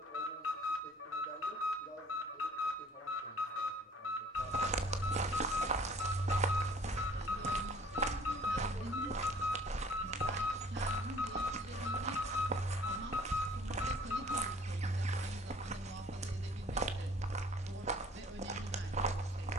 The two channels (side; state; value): both; normal; correlation 0.53